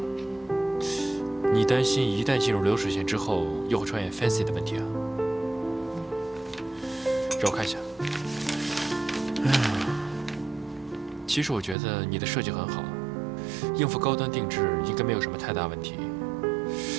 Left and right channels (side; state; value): left; drops out; at 11.8 s